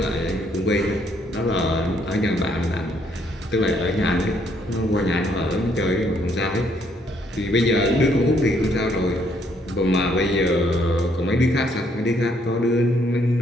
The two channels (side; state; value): both; normal; correlation 0.69